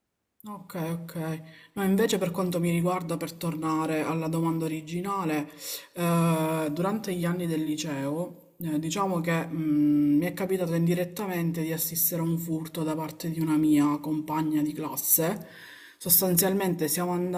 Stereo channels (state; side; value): identical; both; correlation 1.00